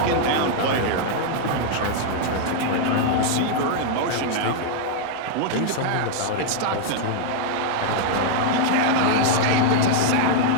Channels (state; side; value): different; both; correlation 0.00